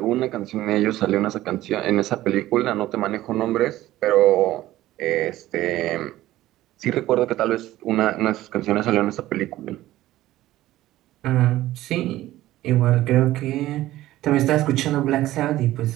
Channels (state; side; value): quieter; left; 15.4 dB